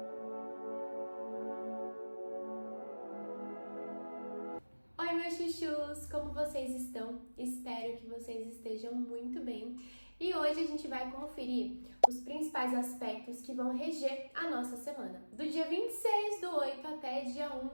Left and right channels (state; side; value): inverted; both; correlation -1.00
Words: Oi, meus chuchus! Como vocês estão? Espero que vocês estejam muito bem. E hoje a gente vai conferir os principais aspectos que vão reger a nossa semana. Do dia 26/8 até dia